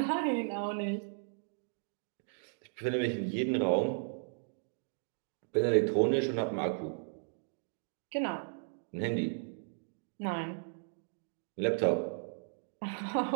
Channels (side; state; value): left; silent; digital silence